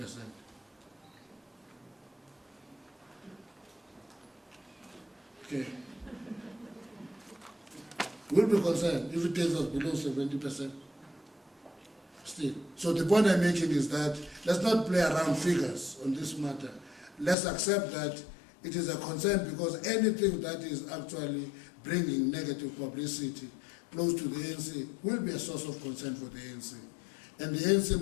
Okay. We'll be concerned if it takes us below 70%. Still. So the point I'm making is that let's not play around figures on this matter. Let's accept that it is a concern, because anything that is actually bringing negative publicity close to the ANC will be a source of concern for the ANC. And the ANC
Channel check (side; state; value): right; drops out; at 17.4 s